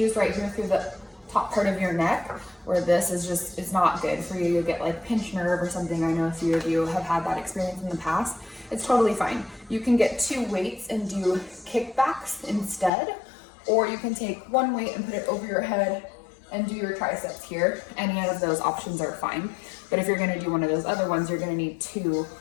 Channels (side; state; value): right; drops out; at 12.9 s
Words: right here through the top part of your neck where this is just, it's not good for you. You get like pinched nerve or something. I know a few of you have had that experience in the past. It's totally fine. You can get 2 weights and do kickbacks instead, or you can take 1 weight and put it over your head and do your triceps here. Any of those options are fine. But if you're gonna do one of those other ones, you're gonna need 2